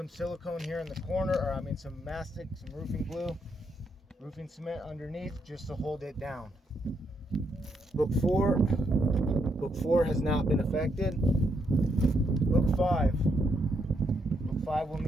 silicone here in the corner, or I mean some mastic, some roofing glue, roofing cement underneath just to hold it down. Book 4 has not been affected. Book 5 will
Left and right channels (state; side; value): normal; both; correlation 0.77